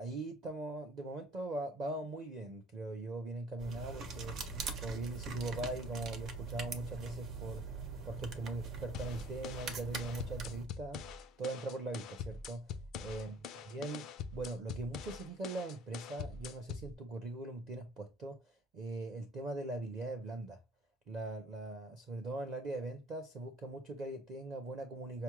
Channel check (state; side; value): normal; both; correlation 0.54